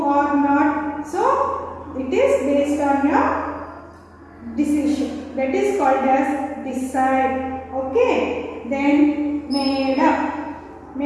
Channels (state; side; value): identical; both; correlation 1.00